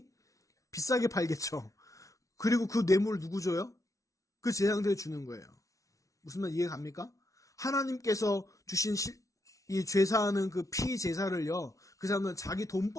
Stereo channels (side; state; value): right; late; 0.16 ms